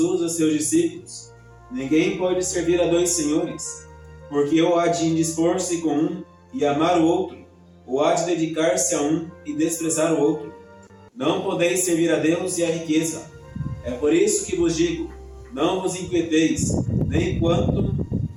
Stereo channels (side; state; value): both; identical; correlation 1.00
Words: a seus discípulos: Ninguém pode servir a dois senhores, porque ou há de indispor-se com um e amar o outro, ou há de dedicar-se a um e desprezar o outro. Não podeis servir a Deus e à riqueza. É por isso que vos digo: não vos inquieteis, nem quanto